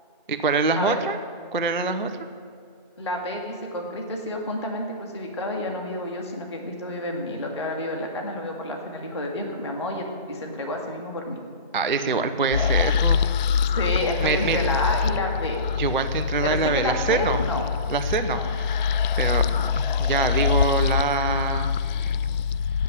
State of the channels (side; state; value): both; inverted; correlation -0.31